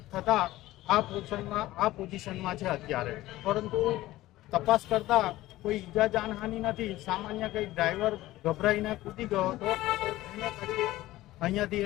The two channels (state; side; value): quieter; right; 16.6 dB